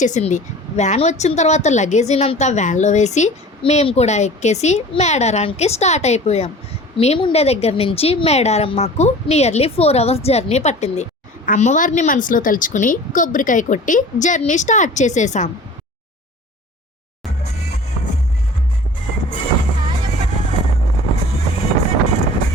వ్యాన్ వచ్చిన తర్వాత లగేజీనంతా వ్యాన్లో వేసి మేము కూడా ఎక్కేసి మేడారానికి స్టార్ట్ అయిపోయాం. మేముండే దగ్గర నుంచి మేడారం మాకు నియర్లీ 4 అవర్స్ జర్నీ పట్టింది. అమ్మవారిని మనసులో తలుచుకుని కొబ్బరికాయ కొట్టి జర్నీ స్టార్ట్ చేసేసాం.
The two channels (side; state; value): both; normal; correlation 0.42